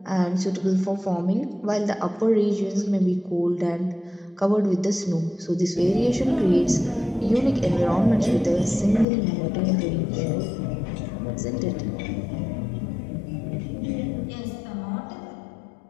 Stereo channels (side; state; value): right; drops out; at 9.1 s